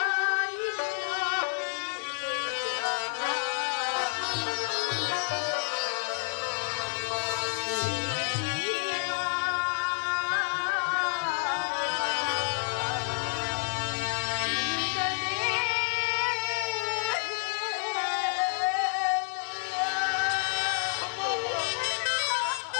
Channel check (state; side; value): silent; right; digital silence